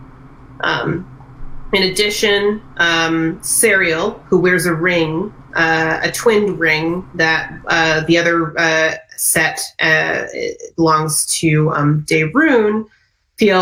In addition, Serial, who wears a ring, a twinned ring that the other set belongs to Daerun,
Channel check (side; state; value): both; identical; correlation 1.00